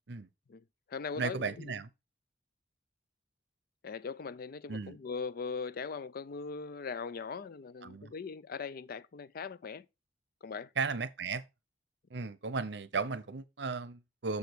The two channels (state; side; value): normal; both; correlation -0.01